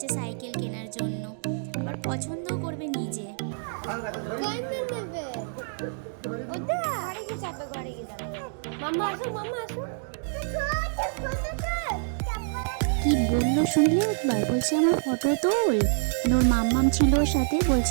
সাইকেল কেনার জন্য, আবার পছন্দও করবে নিজে। কি বললো শুনলে একবার? বলছে আমার ফটো তোল। ওর মাম্মাম ছিল ওর সাথে,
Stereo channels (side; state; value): left; silent; digital silence